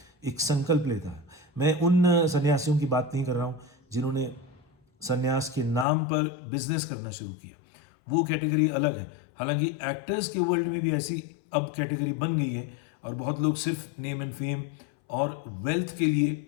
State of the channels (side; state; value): right; drops out; at 5.9 s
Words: एक संकल्प लेता है। मैं उन सन्यासियों की बात नहीं कर रहा हूं जिन्होंने सन्यास के नाम पर बिजनेस करना शुरू किया, वो कैटेगरी अलग है। हालांकि एक्टर्स के वर्ल्ड में भी ऐसी अब कैटेगरी बन गई है और बहुत लोग सिर्फ नेम एंड फेम और वेल्थ के लिए